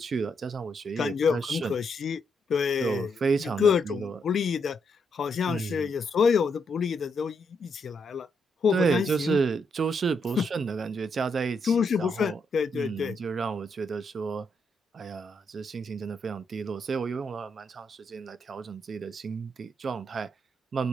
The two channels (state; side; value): normal; both; correlation 0.78